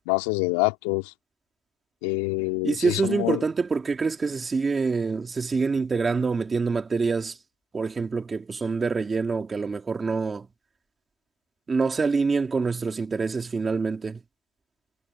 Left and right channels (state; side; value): normal; both; correlation 0.72